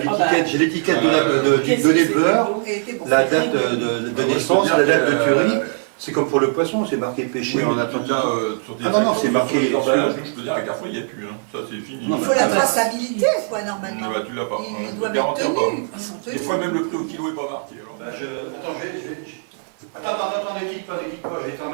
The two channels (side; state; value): left; silent; 57 dB below the other